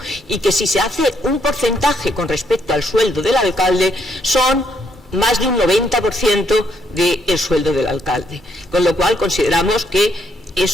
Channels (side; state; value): both; normal; correlation 0.73